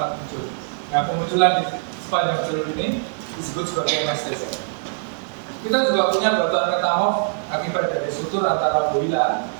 muncul. Nah, pemunculan di sepanjang jalur ini disebut sebagai MSTZ. Kita juga punya batuan metamorf akibat dari sutur antara Woyla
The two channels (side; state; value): left; silent; 64 dB below the other